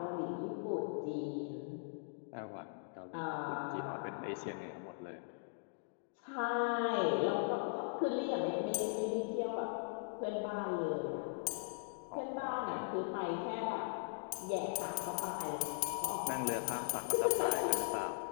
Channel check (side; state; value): right; silent; digital silence